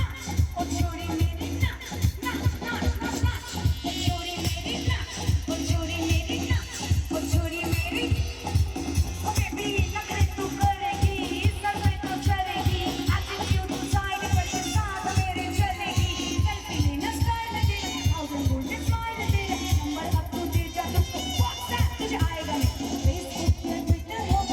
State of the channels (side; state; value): both; identical; correlation 1.00